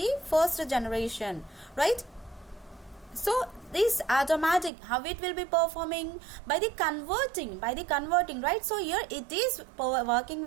first generation, right? So this automatic, how it will be performing? By the converting, right? So here it is working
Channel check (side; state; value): left; drops out; at 4.7 s